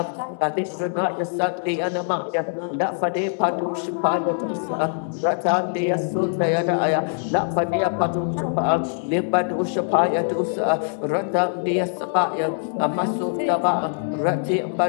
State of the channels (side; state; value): right; silent; digital silence